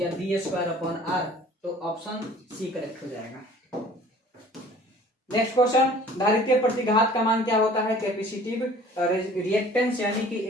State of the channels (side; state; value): both; normal; correlation 0.49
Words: V²/R। तो ऑप्शन सी करेक्ट हो जाएगा। नेक्स्ट क्वेश्चन, धारित्रीय प्रतिघात का मान क्या होता है? कैपेसिटिव रिएक्टेंस यानी कि